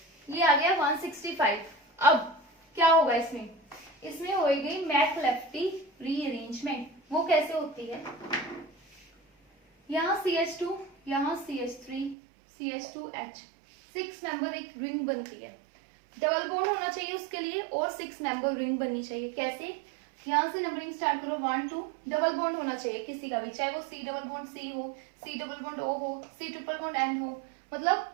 ये आ गया 165। अब क्या होगा इसमें, इसमें होगी मैकलेफ्टी रीअरेंजमेंट। वो कैसे होती है, यहाँ CH2 यहाँ CH3 CH2H 6 मेंबर एक रिंग बनती है, डबल बॉन्ड होना चाहिए उसके लिए और 6 मेंबर रिंग बननी चाहिए। कैसे, यहाँ से नंबरिंग स्टार्ट करो 1 2, डबल बॉन्ड होना चाहिए किसी का भी, चाहे वो C डबल बॉन्ड C हो, C डबल बॉन्ड O हो, C ट्रिपल बॉन्ड N हो, मतलब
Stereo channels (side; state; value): left; drops out; at 12.2 s